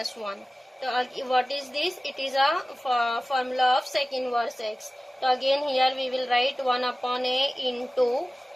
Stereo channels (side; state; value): both; normal; correlation 0.97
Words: 1. So what is this? It is a formula of sec inverse x. So again here we will write 1 upon a into